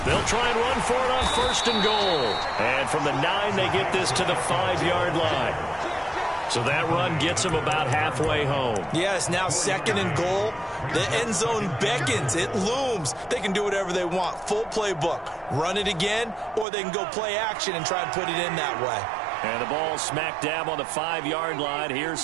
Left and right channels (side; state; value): left; drops out; at 16.7 s